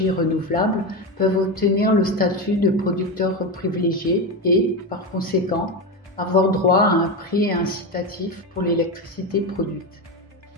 renouvelables peuvent obtenir le statut de producteur privilégié et, par conséquent, avoir droit à un prix incitatif pour l'électricité produite.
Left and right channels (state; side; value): normal; both; correlation 0.16